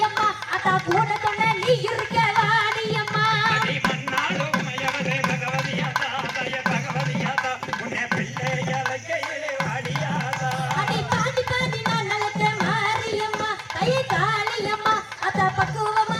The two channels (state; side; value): identical; both; correlation 1.00